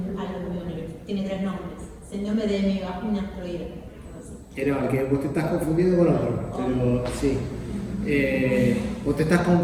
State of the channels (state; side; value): identical; both; correlation 1.00